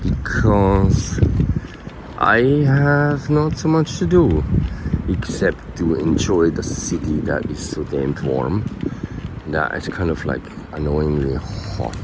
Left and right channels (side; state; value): both; identical; correlation 1.00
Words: Because I have not so much to do except to enjoy the city that is so damn warm. That it's kind of like annoyingly hot